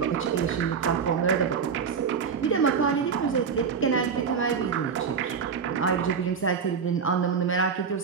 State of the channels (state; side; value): quieter; left; 6.3 dB